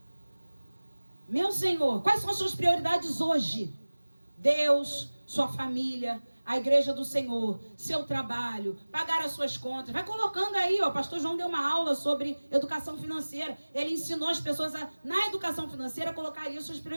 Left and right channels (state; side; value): inverted; both; correlation -1.00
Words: Meu Senhor, quais são as suas prioridades hoje? Deus, sua família, a igreja do Senhor, seu trabalho, pagar as suas contas. Vai colocando aí, ó. O pastor João deu uma aula sobre educação financeira. Ele ensinou as pessoas na educação financeira, colocar aí as suas